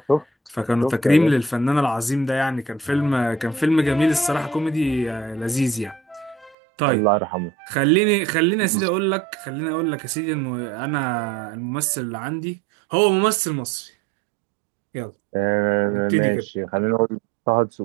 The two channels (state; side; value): drops out; left; at 6.6 s